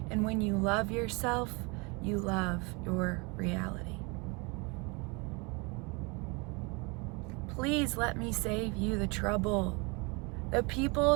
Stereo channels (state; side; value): quieter; left; 29.3 dB